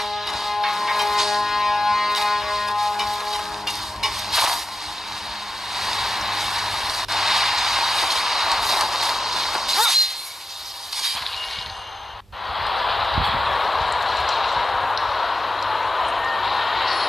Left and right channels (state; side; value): normal; both; correlation 0.90